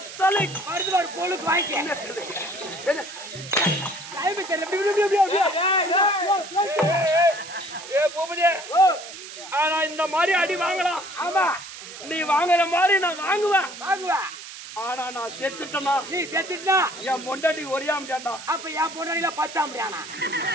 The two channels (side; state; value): right; noise; hiss, 13 dB below the sound